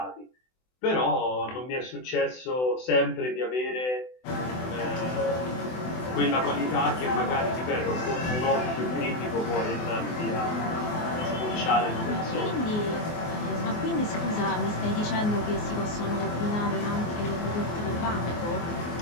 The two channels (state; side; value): late; right; 24 ms